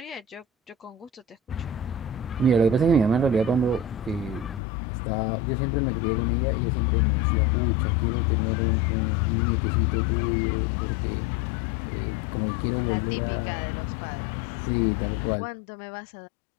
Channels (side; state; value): right; drops out; at 4.6 s